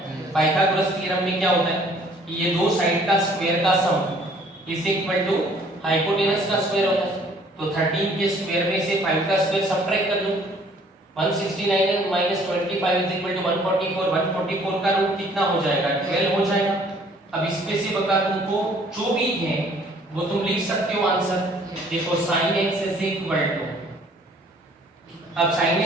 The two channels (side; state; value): both; normal; correlation 0.58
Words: पाइथागोरस थ्योरम में क्या होता है कि ये दो साइड का स्क्वायर का sum is equal to hypotenuse का स्क्वायर होता है, तो 13 के स्क्वायर में से 5 का स्क्वायर सब्ट्रैक्ट कर दो, 169 माइनस 25 इज इक्वल टू 144, 144 का रूट कितना हो जाएगा, 12 हो जाएगा। अब इसमें से बता तुमको जो भी है वो तुम लिख सकते हो आंसर। देखो sin x is equal to, अब sin